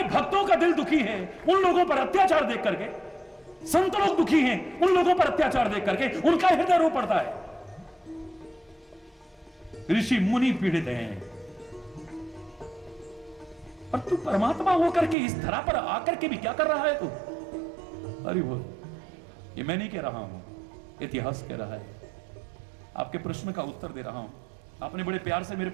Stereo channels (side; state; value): left; drops out; at 15.2 s